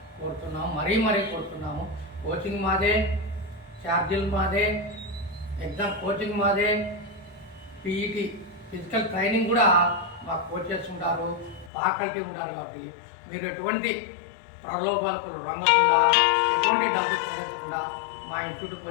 కోరుతున్నాము, మరీ కోరుతున్నాము. కోచింగ్ మాదే, ఛార్జీలు మాదే, ఎగ్జామ్ కోచింగ్ మాదే, పీఈటీ ఫిజికల్ ట్రైనింగ్ కూడా మాకు కోచెస్ ఉంటారు, ఫ్యాకల్టీ ఉంటారు. కాబట్టి మీరు ఎటువంటి ప్రలోభాలకు రంగకుండా, ఎటువంటి డబ్బు చెల్లించకుండా మా ఇన్స్టిట్యూట్కి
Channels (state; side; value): drops out; right; at 11.7 s